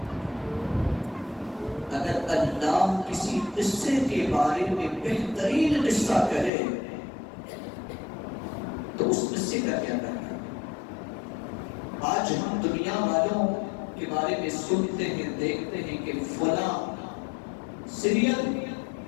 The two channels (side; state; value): right; drops out; at 6.5 s